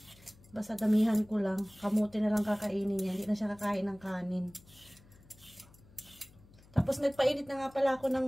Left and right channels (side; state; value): left; noise; hum, 25 dB below the sound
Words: basta damihan ko lang, kamote na lang kakainin niya, hindi na siya kakain ng kanin. Tapos nagpainit na nga pala ako